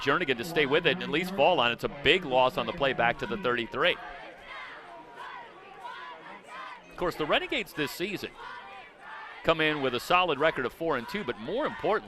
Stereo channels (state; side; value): identical; both; correlation 1.00